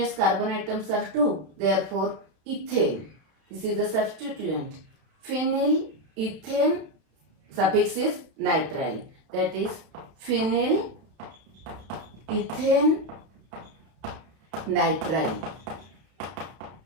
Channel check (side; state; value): left; late; 32 ms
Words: carbon atoms are 2. Therefore ethane. This is the substituent. Phenyl ethane suffix is nitrile. That is phenyl ethane nitrile.